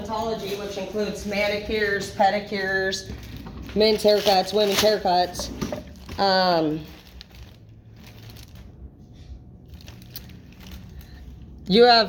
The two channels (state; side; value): identical; both; correlation 1.00